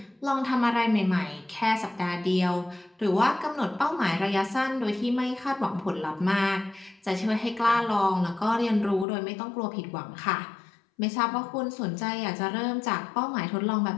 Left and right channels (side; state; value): right; drops out; at 9.1 s